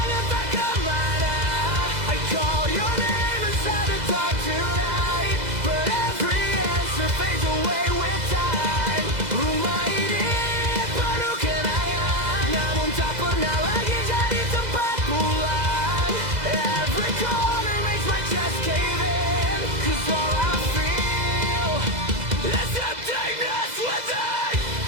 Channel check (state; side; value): late; left; 2.0 ms